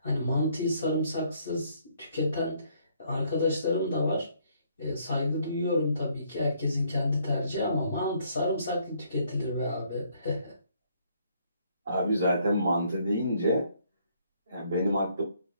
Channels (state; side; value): inverted; both; correlation -0.67